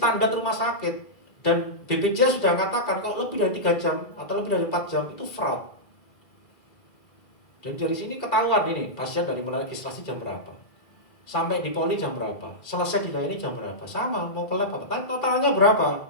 rumah sakit. Dan BPJS sudah katakan kalau lebih dari 3 jam atau lebih dari 4 jam itu fraud. Dan dari sini ketahuan ini pasien dari mulai registrasi jam berapa, sampai di poli jam berapa, selesai dilayani jam berapa, sama mau ke lab apa, totalnya berapa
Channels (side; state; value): right; late; 2.4 ms